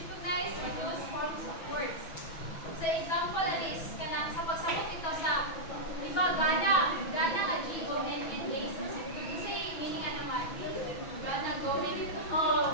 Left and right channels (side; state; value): right; late; 6.1 ms